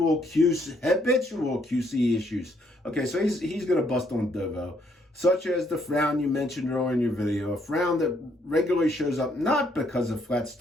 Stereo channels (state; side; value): normal; both; correlation 0.70